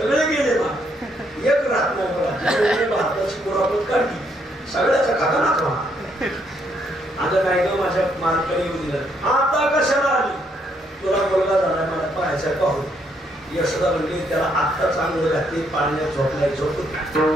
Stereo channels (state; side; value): normal; both; correlation 0.73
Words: गेले ना, एक राहत नाही मला. भारताची मुराबत काढली, सगळ्याचा खातानाच म्हणा. आता काय का माझ्या मालकाने येऊ दिलं. आता कशाला आली? तुला मुलगा झाला, मला पाहायचा पाहू. यशोदा म्हणली त्याला आत्ता चांगलं घातली, पाण्यात झोपलाय, झोपू